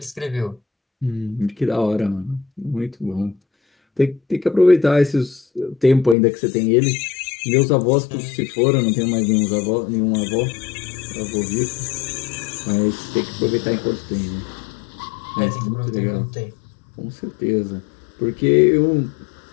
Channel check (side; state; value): right; drops out; at 6.2 s